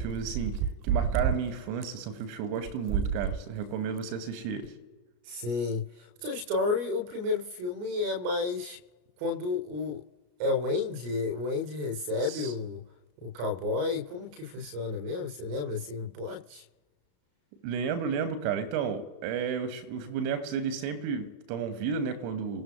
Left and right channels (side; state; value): left; late; 33 ms